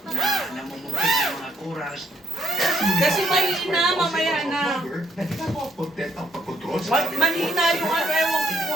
namumukit ng mga kuras. Kasi mahina, mamaya na. Nagpapakontent ang pagkontrol sa Mahina yung ano, ewan ko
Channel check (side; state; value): both; normal; correlation 0.72